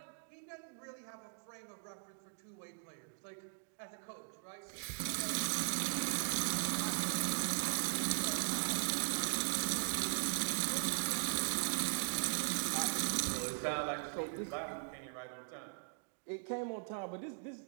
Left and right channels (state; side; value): silent; left; digital silence